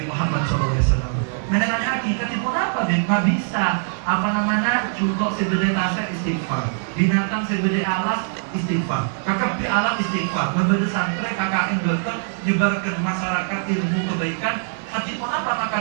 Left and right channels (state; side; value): silent; left; digital silence